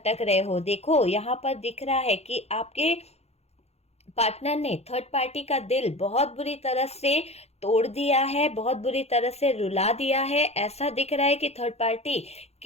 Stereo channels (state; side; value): late; right; 0.31 ms